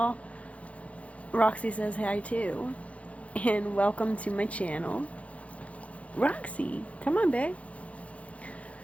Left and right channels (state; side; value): late; right; 0.065 ms